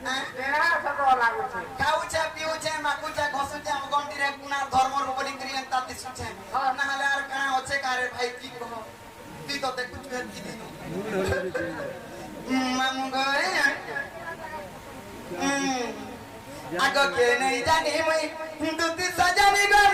नहीं तेरा सब लागू छे খাউছে পিউছে মাকুছে ঘসুছে আম গন্ডিরে কুনার ধর্মর উপরে ক্রিয়া তাতি সুছে না হলে আর কানা হচ্ছে কারে ভাই কি কহ তুই তো দেখু তুই কি দিন মামু গো আগো কে নেই জানি মুই দুতি সজানি গো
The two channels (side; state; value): both; identical; correlation 1.00